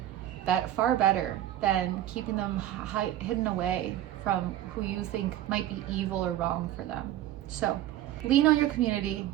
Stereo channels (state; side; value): quieter; left; 13.0 dB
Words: That far better than keeping them hidden away from who you think might be evil or wrong for them. So lean on your community,